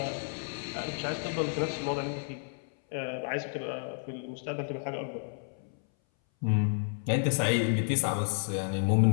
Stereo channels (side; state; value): right; silent; 57 dB below the other